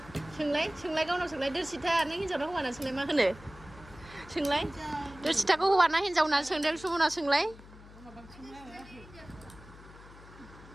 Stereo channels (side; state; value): left; noise; hum, 19 dB below the sound